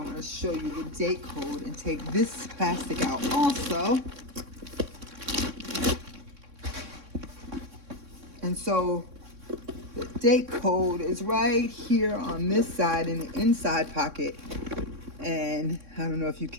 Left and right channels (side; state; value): left; late; 3.6 ms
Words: going to show you the date code and take this plastic out also. And so the date code is right here on this side in the inside pocket. And I don't know if you